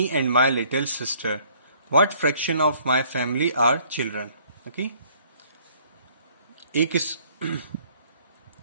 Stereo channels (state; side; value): inverted; both; correlation -0.60